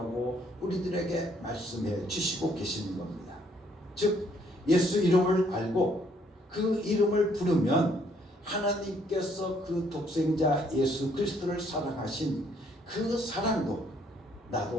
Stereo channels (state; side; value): normal; both; correlation 0.67